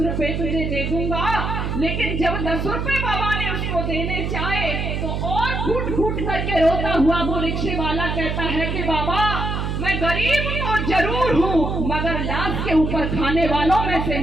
रुपए तुझे दे दूंगा, लेकिन जब 10 रुपए बाबा ने उसको देने चाहे तो और फूट फूट करके रोता हुआ वो रिक्शे वाला कहता है कि बाबा मैं गरीब तो जरूर हूँ, मगर लाश के ऊपर खाने वालों में से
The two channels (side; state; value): right; noise; hum, 2 dB below the sound